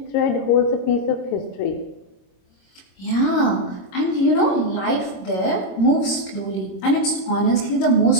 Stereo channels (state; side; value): late; right; 26 ms